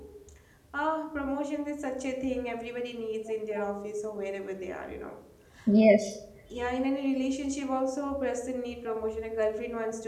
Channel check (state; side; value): identical; both; correlation 1.00